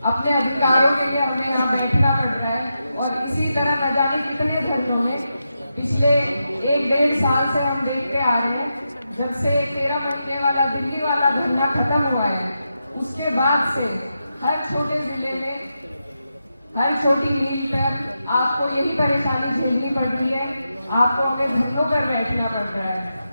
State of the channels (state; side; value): inverted; both; correlation -0.87